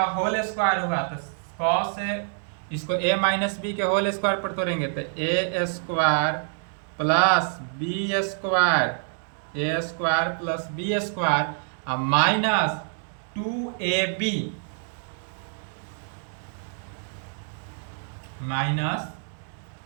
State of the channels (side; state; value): left; silent; digital silence